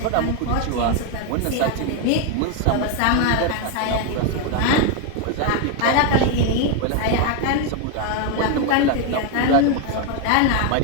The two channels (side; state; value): both; different; correlation 0.01